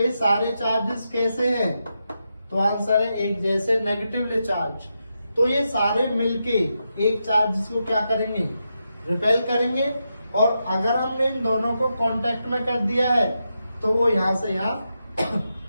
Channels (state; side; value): inverted; both; correlation -0.86